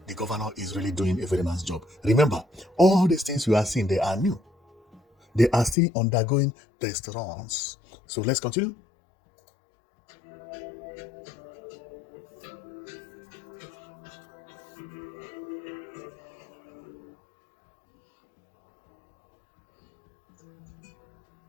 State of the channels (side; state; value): right; drops out; at 5.8 s